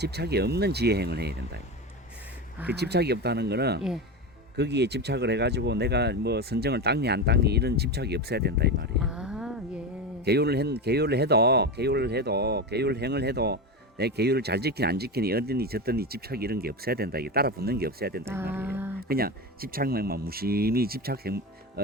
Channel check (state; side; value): normal; both; correlation 0.20